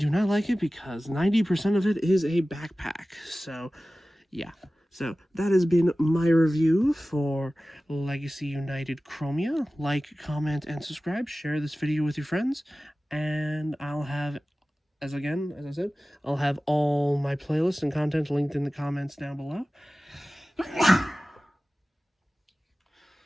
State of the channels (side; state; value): both; normal; correlation 0.96